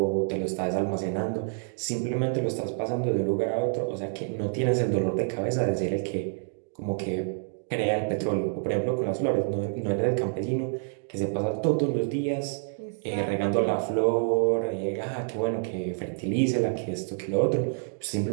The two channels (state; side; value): silent; left; 60 dB below the other